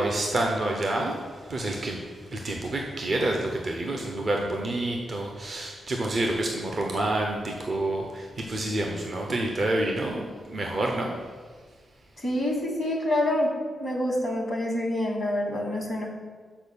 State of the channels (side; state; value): both; normal; correlation 0.83